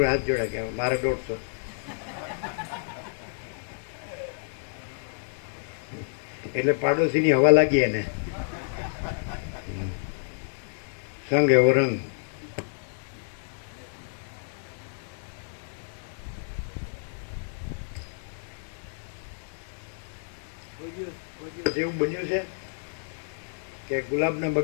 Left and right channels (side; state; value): right; silent; digital silence